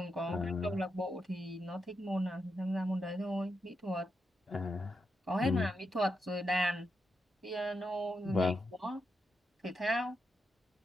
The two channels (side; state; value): both; normal; correlation 0.84